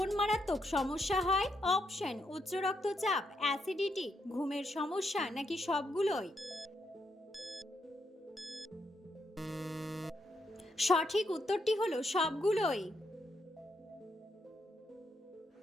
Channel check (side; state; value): both; normal; correlation 0.78